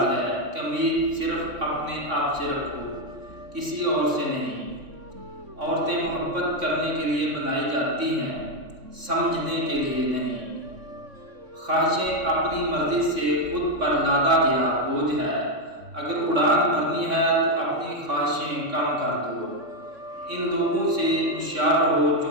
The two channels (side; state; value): left; late; 3.6 ms